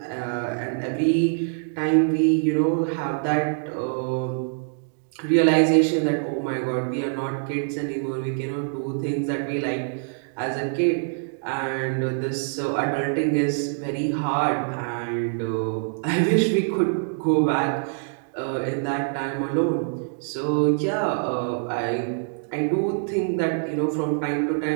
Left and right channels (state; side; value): silent; left; digital silence